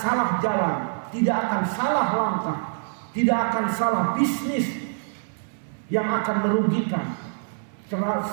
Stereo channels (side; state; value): left; silent; 62 dB below the other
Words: jalan, tidak akan salah langkah, tidak akan salah bisnis yang akan merugikan.